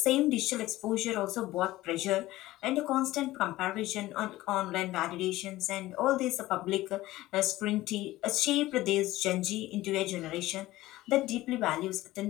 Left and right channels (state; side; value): quieter; right; 17.0 dB